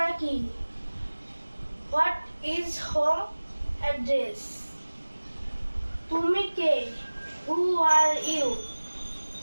কি, what is home address, তুমি কে, who are you,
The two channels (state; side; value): inverted; both; correlation -1.00